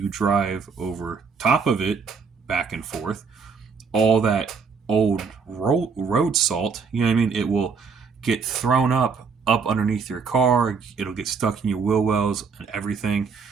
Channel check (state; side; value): quieter; left; 5.4 dB